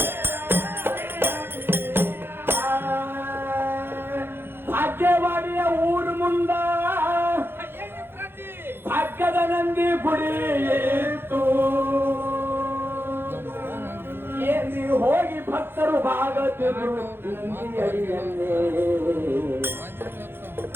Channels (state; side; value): late; left; 0.10 ms